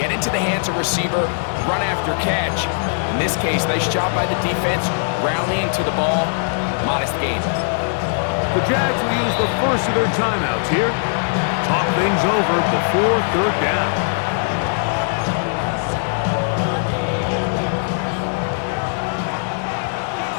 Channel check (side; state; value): right; silent; digital silence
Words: into the hands of receiver, run after catch. In this case, nice job by the defense, rallying to the ball, modest gain. The Jags will use the first of their timeouts here. Talk things over before 3rd down.